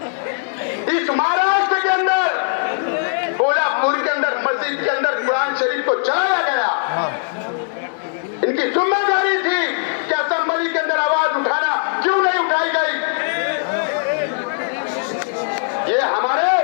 इस महाराष्ट्र के अंदर, कोल्हापुर के अंदर मस्जिद के अंदर कुरान शरीफ को जलाया गया। इनकी जिम्मेदारी थी कि असेंबली के अंदर आवाज उठाना, क्यों नहीं उठाई गई? ये हमारे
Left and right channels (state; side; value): silent; right; 66 dB below the other